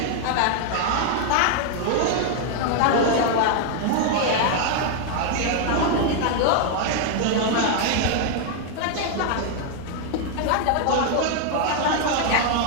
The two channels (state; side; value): different; both; correlation 0.00